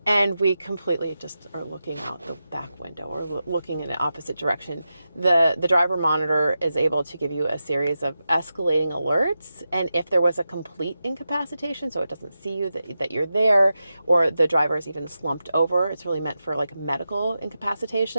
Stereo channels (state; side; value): inverted; both; correlation -0.90